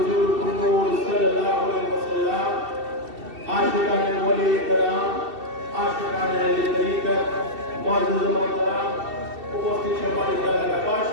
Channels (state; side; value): late; left; 2.7 ms